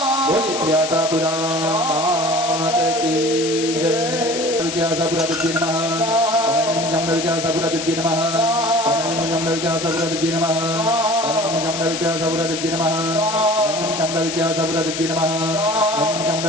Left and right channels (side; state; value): left; noise; hiss, 6 dB below the sound